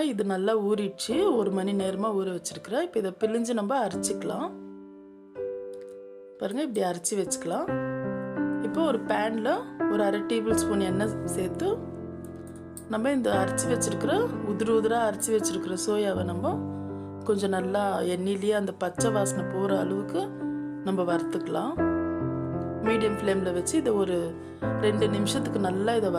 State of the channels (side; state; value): both; identical; correlation 1.00